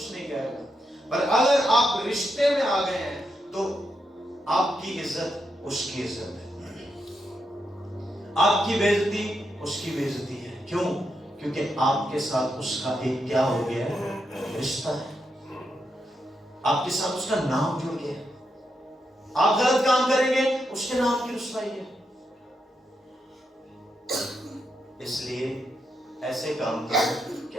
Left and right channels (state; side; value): normal; both; correlation 0.83